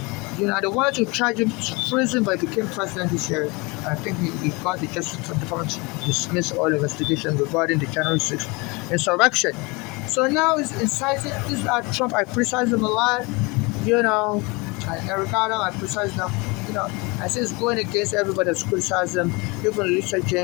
They wanted to charge him to prison, but he became president this year. I think he got the Justice Department to dismiss all investigations regarding the January 6th insurrection. So now he's inciting. This is Trump. I criticize him a lot. Eric Adam, I criticize him. I say it's going against everybody that's criticized him. Even Lisa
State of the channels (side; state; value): right; quieter; 26.8 dB